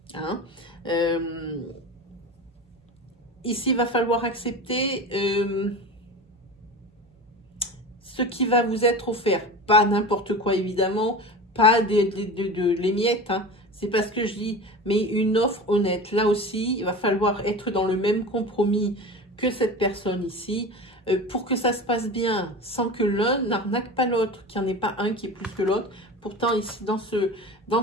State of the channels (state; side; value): normal; both; correlation 0.31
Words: Hein. Ici, il va falloir accepter ce qui va vous être offert. Pas n'importe quoi, évidemment. Pas les miettes. Hein. C'est pas ce que je dis. Mais une offre honnête. Là aussi, il va falloir être dans le même compromis que cette personne ici. Pour que ça se passe bien, sans que l'un n'arnaque pas l'autre, qu'il n'y en ait pas un qui est plus que l'autre. Pourtant, ici, dans